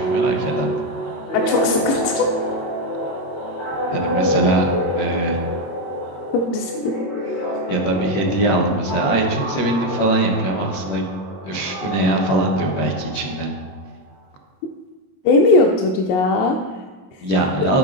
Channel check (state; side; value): late; right; 22 ms